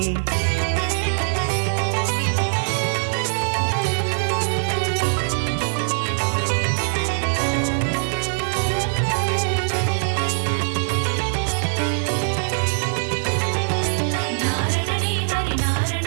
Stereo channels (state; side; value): silent; left; digital silence